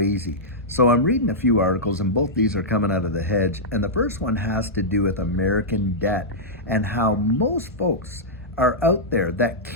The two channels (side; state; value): both; normal; correlation -0.10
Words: So I'm reading a few articles, and both these are coming out of the hedge. And the first one has to do with American debt and how most folks are out there that